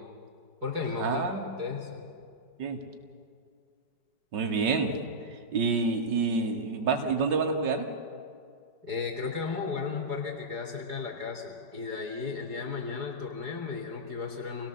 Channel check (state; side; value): late; left; 5.4 ms